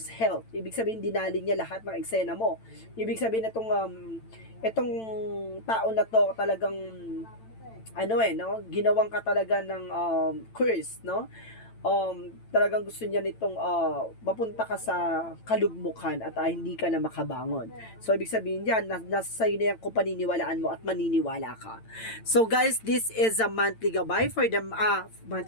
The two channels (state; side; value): late; right; 9.0 ms